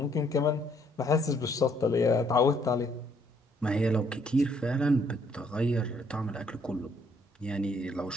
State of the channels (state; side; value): normal; both; correlation 0.67